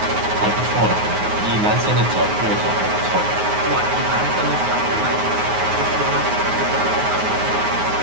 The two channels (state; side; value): late; left; 9.5 ms